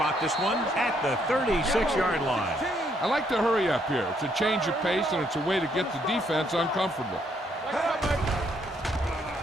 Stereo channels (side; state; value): both; normal; correlation 0.71